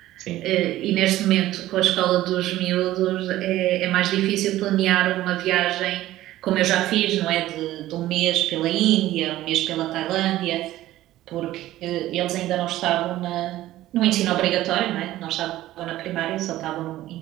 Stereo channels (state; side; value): quieter; left; 15.0 dB